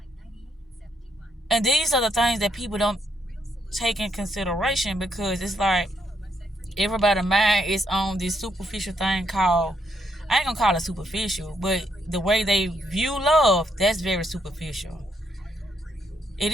And these are the things that people don't take in consideration, because it's like everybody's mind is on this superficial thing called, I ain't gonna call it superficial, but the way they view love, that's very superficial. It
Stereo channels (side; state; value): both; normal; correlation 0.76